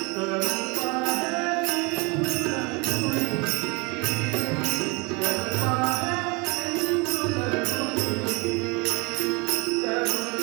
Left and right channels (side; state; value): left; quieter; 28.7 dB